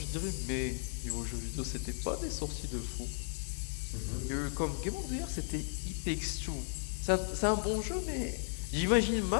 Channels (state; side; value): silent; right; digital silence